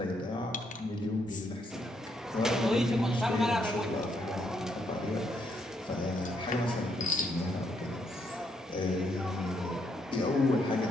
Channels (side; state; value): both; normal; correlation 0.75